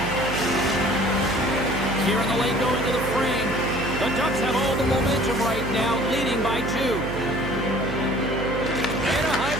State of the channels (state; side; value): noise; right; hum, 5 dB below the sound